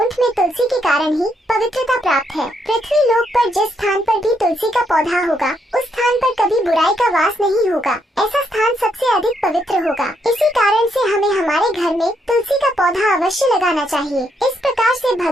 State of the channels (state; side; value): normal; both; correlation 0.76